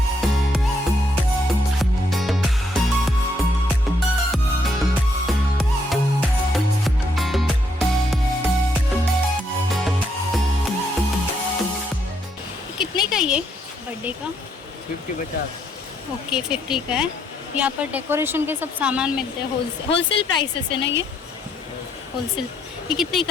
कितने का ये बर्थडे का? 50। ओके 50 का है। यहाँ पर डेकोरेशन के सब सामान मिलते हैं, होलसेल प्राइसेस है ना ये? होलसेल। ये कितने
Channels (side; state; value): both; normal; correlation 0.73